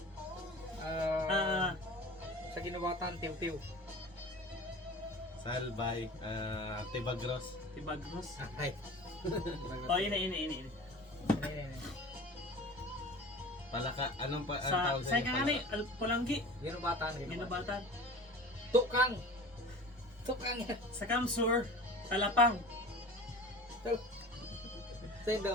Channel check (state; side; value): normal; both; correlation 0.38